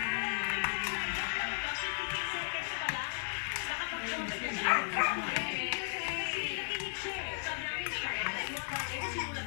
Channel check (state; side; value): silent; right; 54 dB below the other